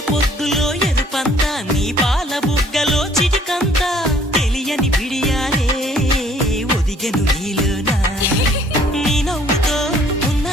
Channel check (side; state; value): both; normal; correlation 0.59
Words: పొద్దులో ఎరుపంతా నీ పాల బుగ్గలో చిటికంతా తెలియని బిడియాలే ఒదిగెను నీలోనా నీ నవ్వుతో